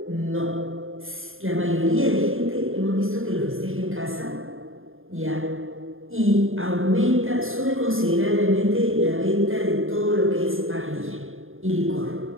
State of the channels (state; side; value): late; left; 0.60 ms